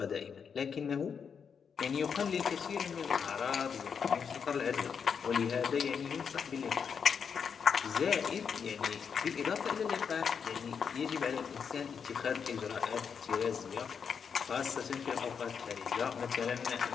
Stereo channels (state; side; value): quieter; right; 6.6 dB